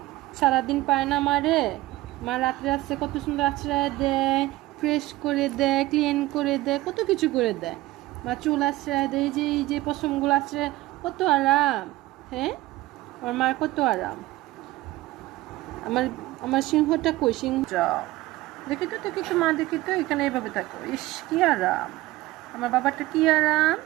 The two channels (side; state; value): left; quieter; 18.0 dB